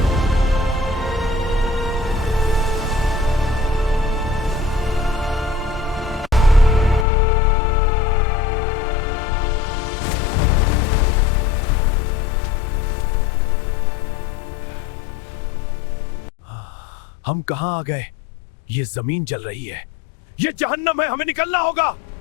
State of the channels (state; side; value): drops out; right; at 7.1 s